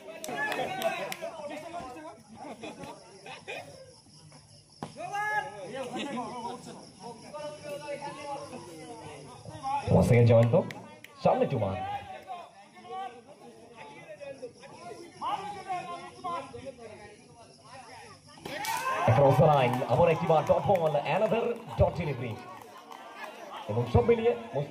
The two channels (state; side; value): identical; both; correlation 1.00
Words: জয়ন্ত সামনে তুমান, আবার একটিবার dot ball, another dot delivery এবং সব মিলিয়ে most